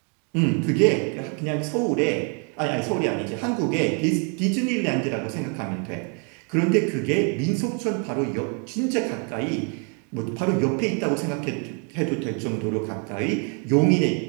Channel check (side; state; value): left; quieter; 37.7 dB